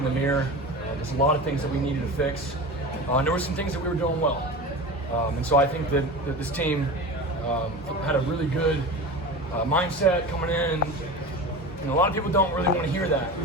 the mirror. There's a lot of things that we needed to fix. And there were some things that we were doing well. And so I think that this team had a really good mindset coming in. A lot of people don't really want to hear that.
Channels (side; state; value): both; normal; correlation 0.30